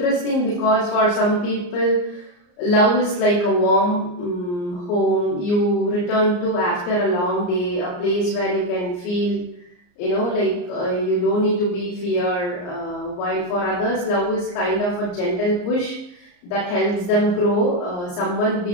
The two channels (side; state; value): right; late; 34 ms